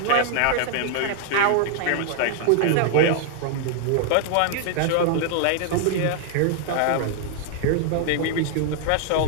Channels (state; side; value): different; both; correlation 0.00